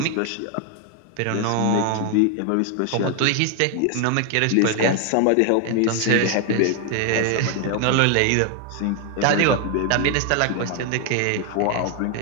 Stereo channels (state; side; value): different; both; correlation 0.01